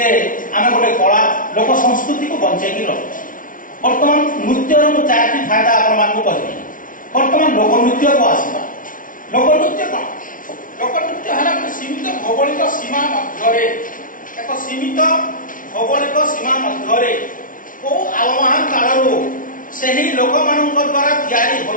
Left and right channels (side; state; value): right; late; 0.39 ms